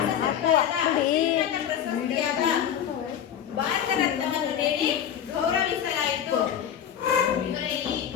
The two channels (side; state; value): right; quieter; 9.4 dB